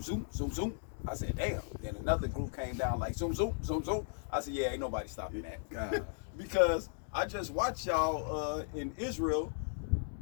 zoom zoom zoom. I said, damn. Then another group came down like zoom zoom zoom zoom. I said, yeah, ain't nobody stopping that. God. Because I just watched y'all in Israel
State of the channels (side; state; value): right; silent; digital silence